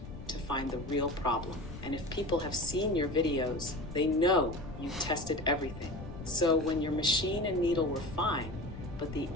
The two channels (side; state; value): left; noise; rumble, 12 dB below the sound